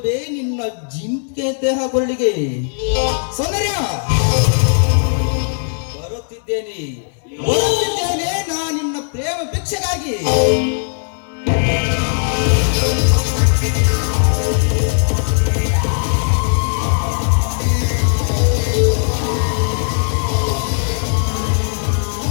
ನಿನ್ನ ಜಿಂಕೆ ದೇಹ ಕೊರಳಿಗೆ. ಸೌಂದರ್ಯ, ಬರುತ್ತಿದ್ದೇನೆ ನಾ ನಿನ್ನ ಪ್ರೇಮ ಭಿಕ್ಷೆಗಾಗಿ.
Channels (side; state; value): right; silent; 67 dB below the other